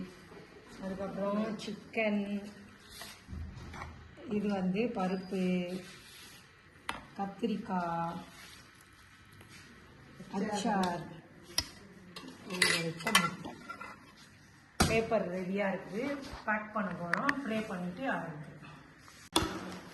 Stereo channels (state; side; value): identical; both; correlation 1.00